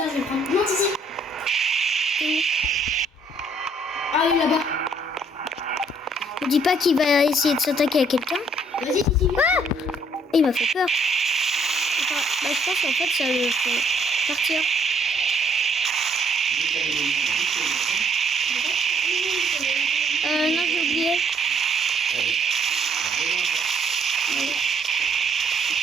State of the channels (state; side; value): normal; both; correlation 0.66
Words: je vais prendre. Non, ici. Ah oui, là-bas. Ne dis pas qu'il va essayer de s'attaquer à quelqu'un. Vas-y, ici. Ah! Il m'a fait peur. Attends, bah, je pense qu'en fait, ça le fait partir. Non, j'ai oublié.